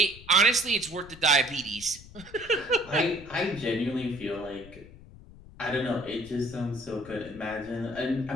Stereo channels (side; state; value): left; noise; rumble, 19 dB below the sound